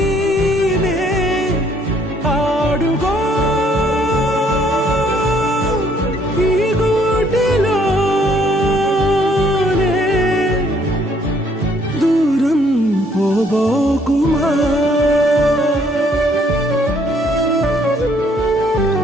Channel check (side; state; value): both; normal; correlation 0.65